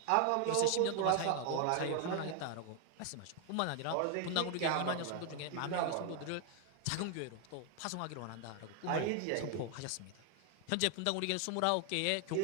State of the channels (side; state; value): both; different; correlation 0.00